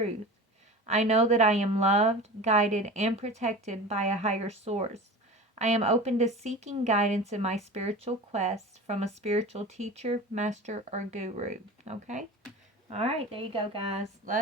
I know that I am loved, guided, and protected by a higher source. I am open to seeking guidance in my spiritual quest from a spiritual teacher, master, or guru. Okay? All right, there you go, guys.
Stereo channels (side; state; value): both; normal; correlation 0.34